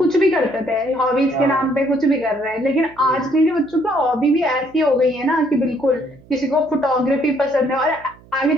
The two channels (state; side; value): noise; right; hum, 25 dB below the sound